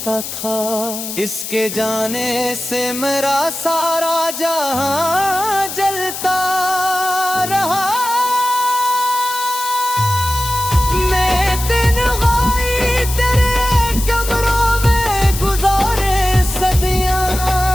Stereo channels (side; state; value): left; noise; hiss, 7 dB below the sound